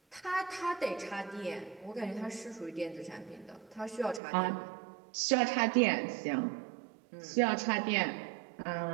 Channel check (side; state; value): left; drops out; at 4.2 s